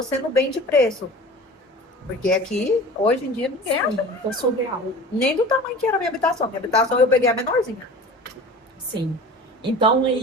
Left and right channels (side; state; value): both; normal; correlation 0.39